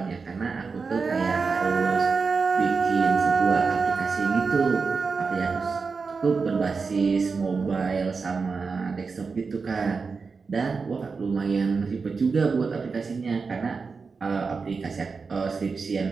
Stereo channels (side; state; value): left; quieter; 4.8 dB